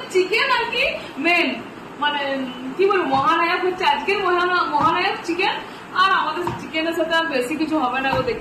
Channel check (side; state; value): both; identical; correlation 1.00